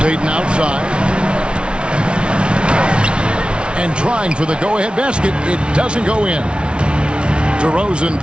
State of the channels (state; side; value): late; left; 0.057 ms